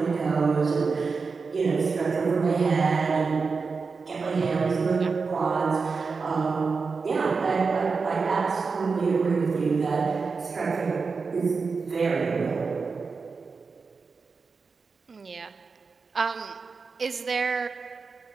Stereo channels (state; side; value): quieter; left; 4.8 dB